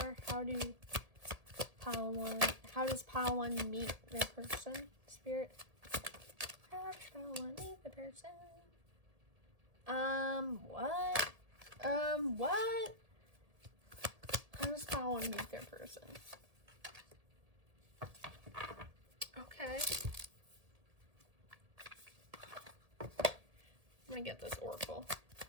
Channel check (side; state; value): left; late; 1.8 ms